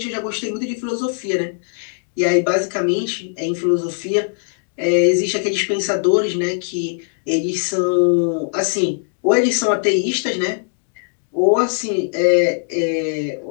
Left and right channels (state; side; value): silent; right; digital silence